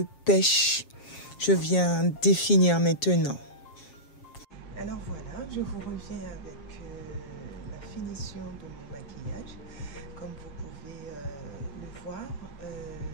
pêche. Je viens définir maintenant. Alors voilà, je vous reviens avec la finition de mon maquillage. Comme vous pouvez le voir,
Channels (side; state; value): right; late; 7.3 ms